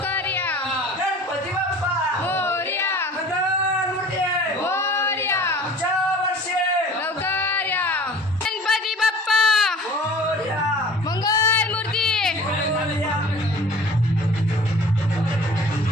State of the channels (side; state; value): both; normal; correlation 0.45